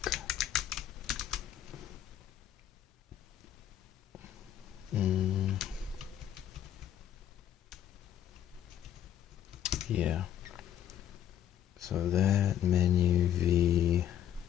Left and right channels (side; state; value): right; quieter; 10.4 dB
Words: Yeah. So that menu V.